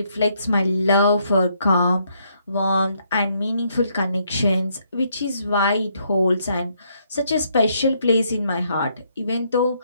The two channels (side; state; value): both; inverted; correlation -0.72